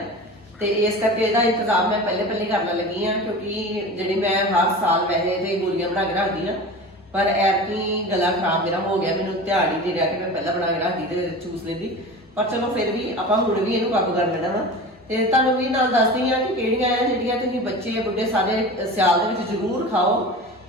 ਤੇ ਇਸ ਕਰਕੇ ਇਹਦਾ ਇੰਤਜ਼ਾਮ ਮੈਂ ਪਹਿਲੇ ਕਰਨ ਲੱਗੀ ਆ, ਕਿਉਂਕਿ ਜਿਹੜੀ ਮੈਂ ਹਰ ਸਾਲ ਵੈਸੇ ਤੇ ਗੋਲੀਆਂ ਬਣਾ ਕੇ ਰੱਖਦੀ ਆ, ਪਰ ਐਤਕੀ ਗਲਾ ਖਰਾਬ ਮੇਰਾ ਹੋ ਗਿਆ। ਮੈਨੂੰ ਧਿਆਨ ਹੀ ਨਹੀਂ ਰਿਹਾ ਕਿ ਮੈਂ ਪਹਿਲਾਂ ਬਣਾ ਕੇ ਰੱਖਦੀ ਤੇ ਚੂਸ ਲੈਂਦੀ, ਪਰ ਚਲੋ ਫਿਰ ਵੀ ਆਪਾਂ ਹੁਣ ਵੀ ਇਹਨੂੰ ਕਾਬੂ ਕਰ ਲੈਣਾ ਵਾ। ਤੇ ਤੁਹਾਨੂੰ ਵੀ ਨਾਲ ਦੱਸਦੀ ਆ ਕਿ ਕਿਹੜੀਆਂ ਆ ਜਿਹੜੀਆਂ ਤੁਸੀਂ ਬੱਚੇ ਬੁੱਢੇ ਸਾਰੇ ਸਿਆਲ ਦੇ ਵਿੱਚ ਜ਼ਰੂਰ ਖਾਓ,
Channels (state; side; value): normal; both; correlation 0.33